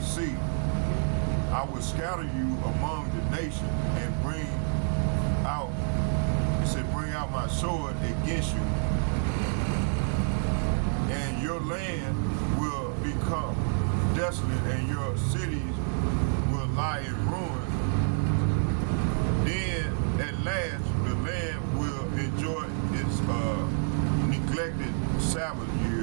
see. I will scatter you among the nations and bring out my sword against you, and your land will become desolate, and your cities will lie in ruins. Then at last the land will enjoy its neglected Sabbath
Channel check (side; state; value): left; silent; 58 dB below the other